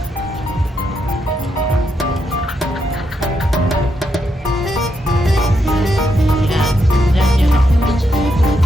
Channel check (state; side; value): normal; both; correlation 0.81